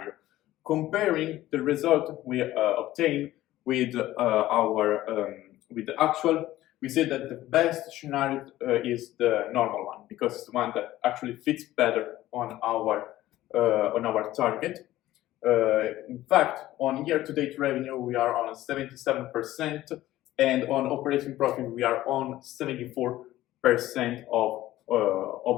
Comparing the result we obtain with the actual, we see that the best scenario is the normal one, because it's the one that actually fits better on our target. In fact, on year-to-date revenue, we are on 77%, and on operating profit, we are on 74% of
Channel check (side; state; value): right; quieter; 15.3 dB